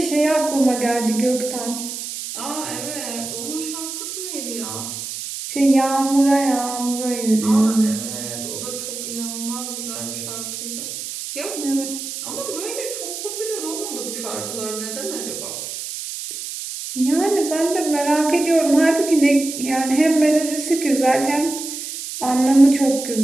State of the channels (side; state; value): right; noise; hiss, 7 dB below the sound